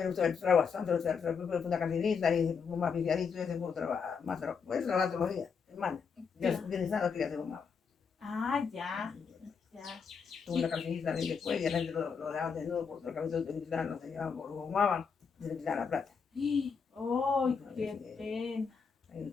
usó el trabajo bastante, fue una cantinita y fue más aficiadito y se fue a trabajar, más trabajo. Puede trabajar todos los días, hermano. Ya utilizando que ya se fumaba. Ah, ya. Ya. Tuvo una cantinita y después ya la gente lo dejaban desnudo por la cabeza de utilizar, no se llevaban, lo fumaban y se le quitaban la plata. ¡Oh, qué pena! Ahí el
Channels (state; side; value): quieter; right; 5.9 dB